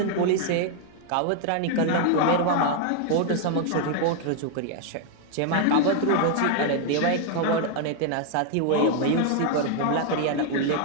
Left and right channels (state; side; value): different; both; correlation 0.00